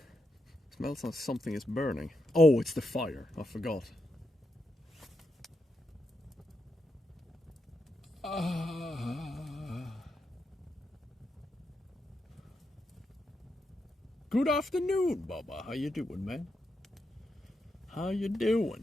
Smells like something is burning. Oh, it's the fire. I forgot. Good afternoon, Bubba. How you doing, man? How you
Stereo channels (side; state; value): both; normal; correlation 0.84